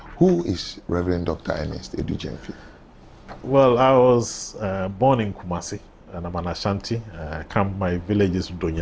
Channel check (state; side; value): identical; both; correlation 1.00